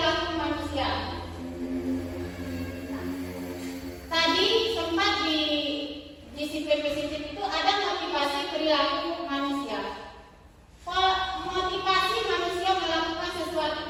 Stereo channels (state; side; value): identical; both; correlation 1.00